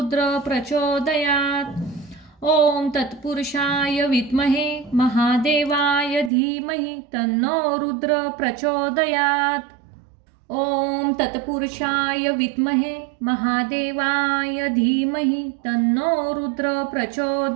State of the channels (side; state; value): left; drops out; at 6.3 s